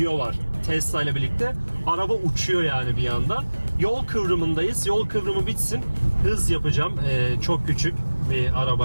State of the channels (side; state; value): both; inverted; correlation -1.00